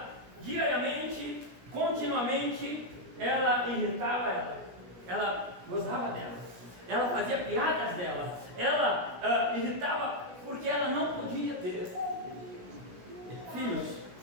diariamente, continuamente, ela irritava ela gozava dela, ela fazia piadas dela, ela irritava porque ela não podia ter filhos.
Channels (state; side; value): late; left; 17 ms